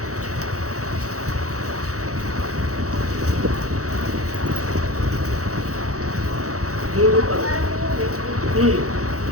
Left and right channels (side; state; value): left; late; 0.65 ms